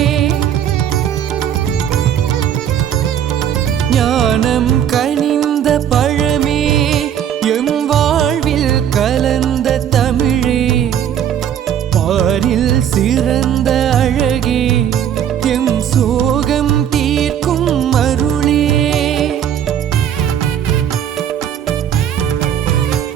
ஞானம் கனிந்த பழமே எம் வாழ்வில் கலந்த தமிழே பாரில் சிறந்த அழகே எம் சோகம் தீர்க்கும் அருளே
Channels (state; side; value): quieter; left; 9.5 dB